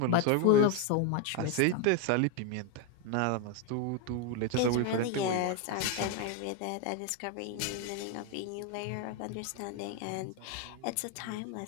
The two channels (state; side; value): different; both; correlation 0.01